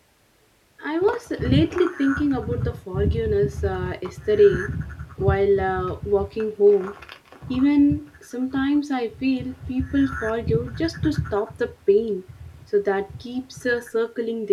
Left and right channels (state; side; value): identical; both; correlation 1.00